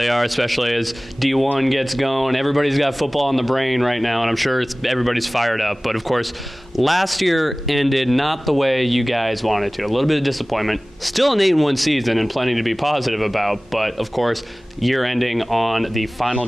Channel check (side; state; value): both; normal; correlation 0.98